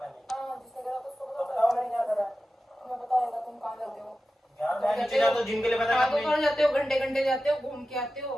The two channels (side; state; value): both; normal; correlation 0.93